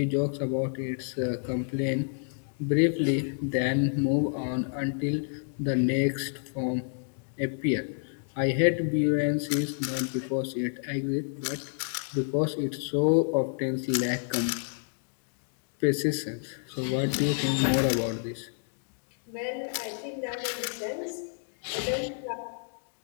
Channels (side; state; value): right; silent; digital silence